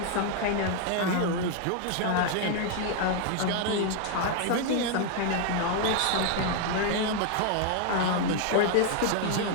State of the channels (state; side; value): different; both; correlation 0.00